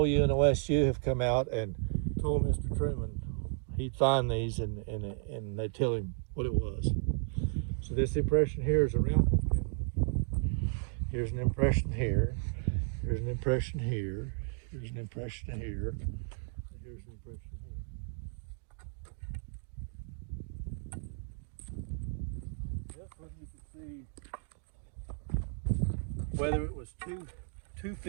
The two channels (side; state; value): left; silent; 55 dB below the other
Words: and OSU have come out and told Mr. Truman he'd find these and they'd tell him what it was. So this impression here is a round one. Here's an impression here. Here's an impression here. Here's an impression here. And here's an impression here. This one you can see whether it was two